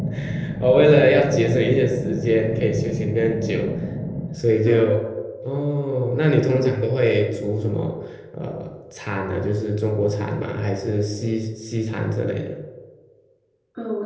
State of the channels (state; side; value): identical; both; correlation 1.00